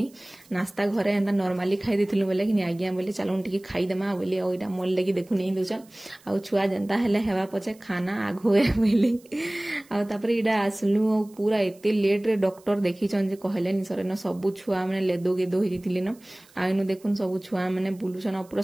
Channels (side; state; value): right; noise; hiss, 28 dB below the sound